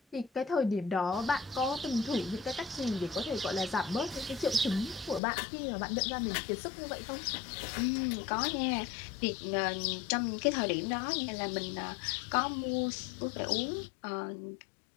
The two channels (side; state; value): right; drops out; at 5.2 s